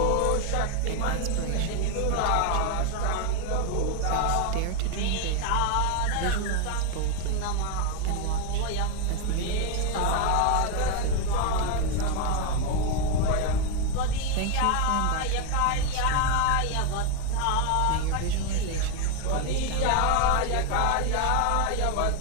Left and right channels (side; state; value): both; different; correlation 0.01